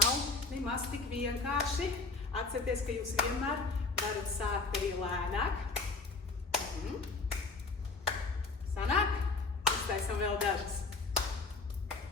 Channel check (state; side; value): quieter; right; 3.7 dB